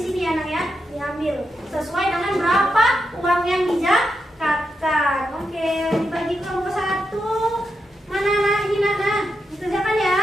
ya nak ya. Diambil sesuai dengan berapa uang yang dizakatkan. Oke, dibagi kelompok 1. Mana nak ini nak? Dikerjakan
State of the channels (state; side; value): normal; both; correlation 0.85